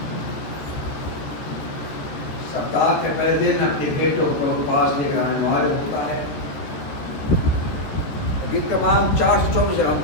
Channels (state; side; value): late; right; 13 ms